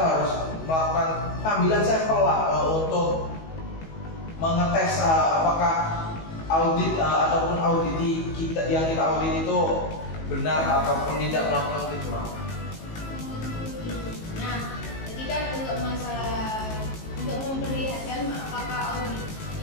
harus melakukan pengambilan sampel lah untuk mengetes apakah audit ataupun auditi yang kita audit itu benar ataupun tidak melakukan kecurangan. Nah, jadi kan untuk memperlihatkan apakah audit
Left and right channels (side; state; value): right; late; 19 ms